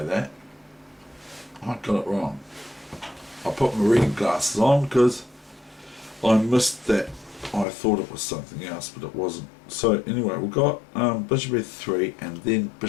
that. I got it wrong. I put my reading glasses on because I missed that. I thought it was something else, but it wasn't. So anyway, we've got bishop f3 and then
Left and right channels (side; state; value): right; drops out; at 7.7 s